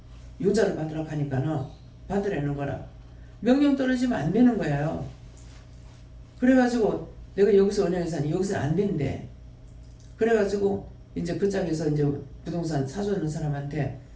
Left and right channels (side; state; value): both; identical; correlation 1.00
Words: 용자를 받으라고 하니까는 받으라는 거라. 명령 떨어지면 안 되는 거예요. 그래가지고 내가 여기서 은행에서 하니 여기서는 안 된대. 그래가지고 이제 그 짝에서 이제 부동산 사주는 사람한테